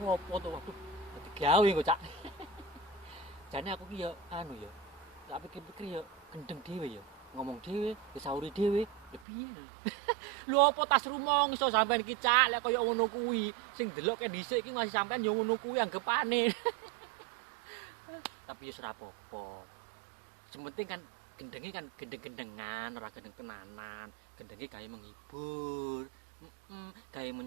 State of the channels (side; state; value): left; drops out; at 9.2 s